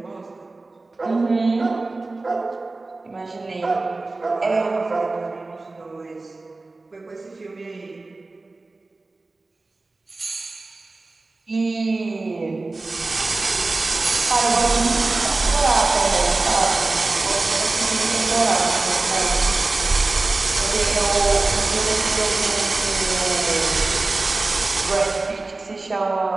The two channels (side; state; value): left; quieter; 3.3 dB